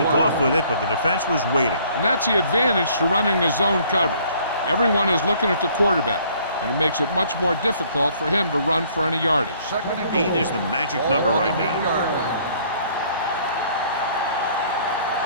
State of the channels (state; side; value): inverted; both; correlation -0.60